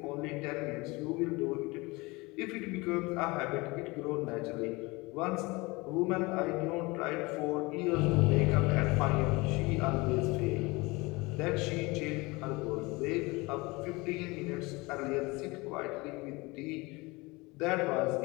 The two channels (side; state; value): right; quieter; 24.1 dB